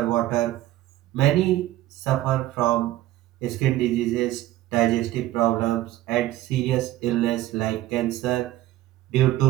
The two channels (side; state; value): left; quieter; 15.0 dB